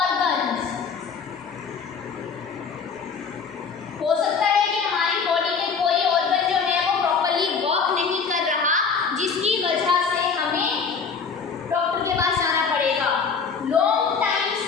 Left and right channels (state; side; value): quieter; right; 5.6 dB